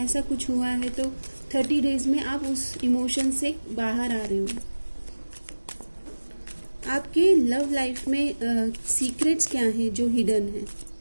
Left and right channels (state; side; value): inverted; both; correlation -1.00